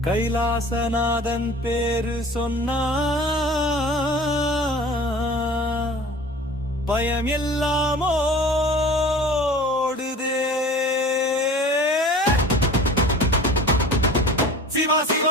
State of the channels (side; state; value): both; normal; correlation 0.42